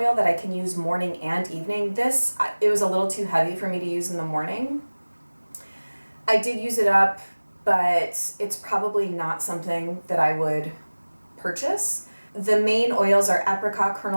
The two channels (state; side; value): inverted; both; correlation -1.00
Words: that I can use morning and evening. This, it was a little too heavy for me to use in the morning. I did use it up, but it's probably not something that I would purchase. The main oils are apricot